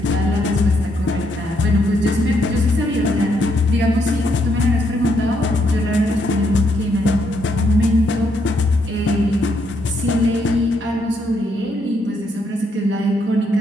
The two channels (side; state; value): both; normal; correlation 0.75